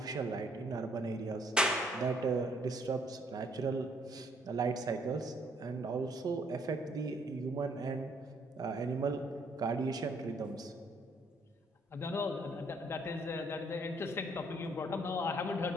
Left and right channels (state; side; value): normal; both; correlation 0.66